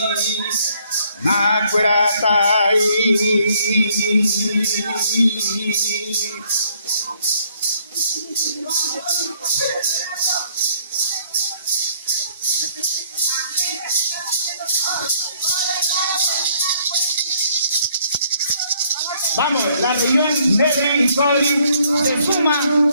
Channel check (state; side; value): inverted; both; correlation -0.66